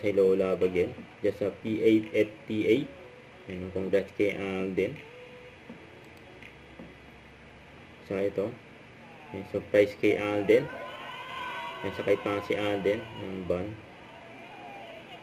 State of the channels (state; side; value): identical; both; correlation 1.00